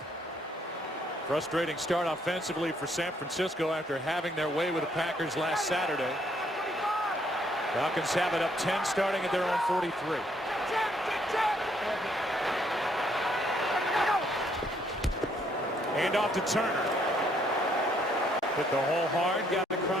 Frustrating start offensively for San Francisco after having their way with the Packers last Saturday. Falcons have it up 10 starting at their own 43. Hand off to Turner. Hit the hole hard, got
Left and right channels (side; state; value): both; normal; correlation 0.69